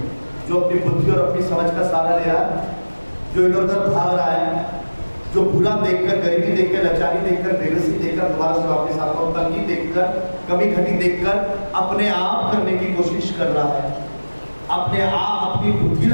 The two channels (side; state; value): both; inverted; correlation -1.00